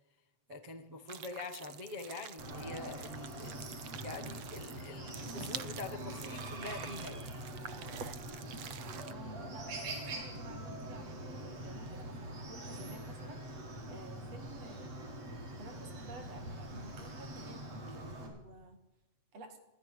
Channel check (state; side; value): late; left; 7.8 ms